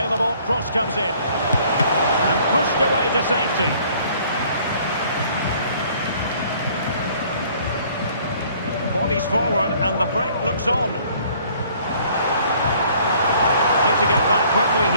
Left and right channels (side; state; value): both; inverted; correlation -0.58